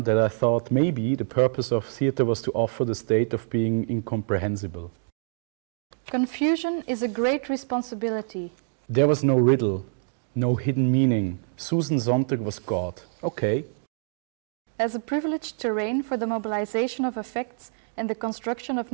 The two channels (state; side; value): silent; left; digital silence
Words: I thought maybe the purpose of theatre was to offer the state of being incomprehensible. Confusion is a great responsibility. There was no riddle, no hidden meaning. Susan Sontag was God. Okay. As a privileged terrain for the mobilization of affects and the construction of